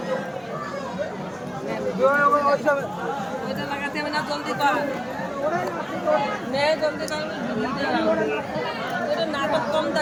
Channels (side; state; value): both; identical; correlation 1.00